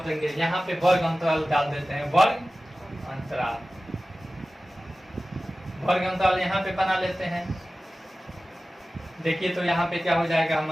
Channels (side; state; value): both; normal; correlation 0.96